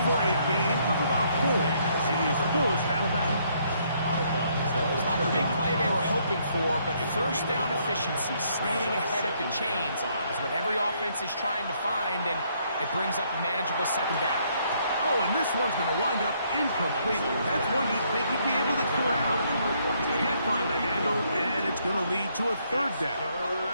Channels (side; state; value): both; inverted; correlation -0.70